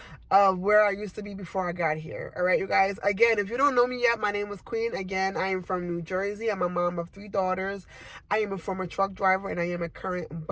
of where I used to be before I got here. All right, you guys. Again, if you don't know me yet, my name is Queen. Again, I am from New Jersey. I'm a mom of 3 daughters. I am a former truck driver and I am a current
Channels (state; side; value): identical; both; correlation 1.00